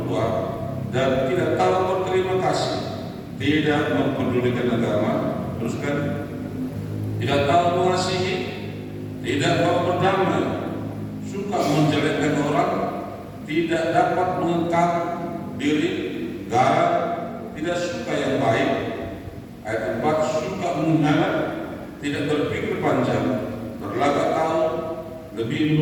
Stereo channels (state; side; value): identical; both; correlation 1.00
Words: tua dan tidak tahu berterima kasih, tidak mempedulikan agama, terus kan, tidak tahu mengasihi, tidak mau berdamai, suka menjelekkan orang, tidak dapat mengengkang diri, garang, tidak suka yang baik. Ayat 4, suka mengkhianat, tidak berpikir panjang, berlagak tahu, lebih